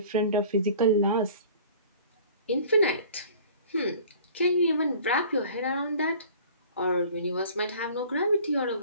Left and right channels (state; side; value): inverted; both; correlation -0.47